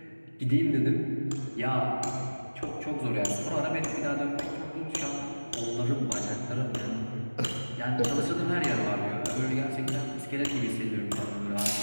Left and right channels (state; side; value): inverted; both; correlation -1.00